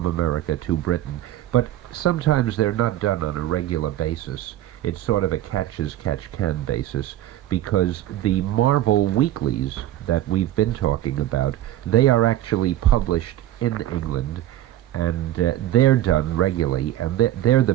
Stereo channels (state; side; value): quieter; left; 13.3 dB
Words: America to Britain, but sometimes they're not done on a regular basis. It's sort of a catch-as-catch-can basis, because the Marvel weeklies that we've been talking about, they are actually published in England, and they're done regularly, and they're the